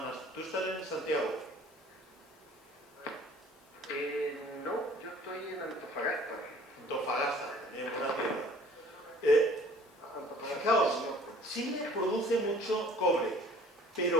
¿Tú estás en Santiago? No, yo estoy en Antofagasta. Antofagasta, en buena tierra. Fijaos, Chile produce mucho cobre,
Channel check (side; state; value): both; normal; correlation 0.52